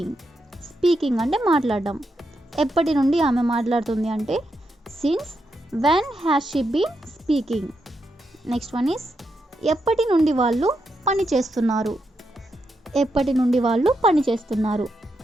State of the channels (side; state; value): both; normal; correlation 0.83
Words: Speaking అంటే మాట్లాడడం. ఎప్పటి నుండి ఆమె మాట్లాడుతుంది అంటే since when has she been speaking. Next one is ఎప్పటి నుండి వాళ్ళు పని చేస్తున్నారు. ఎప్పటి నుండి వాళ్ళు పని చేస్తున్నారు.